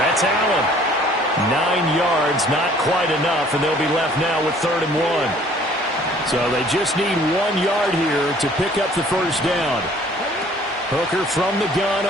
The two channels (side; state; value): both; normal; correlation 0.55